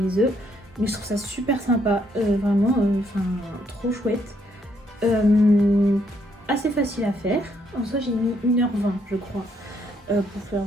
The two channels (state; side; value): normal; both; correlation 0.72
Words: œufs. Mais je trouve ça super sympa, vraiment, trop chouette. Assez facile à faire. En soi j'ai mis 1h20 je crois pour faire,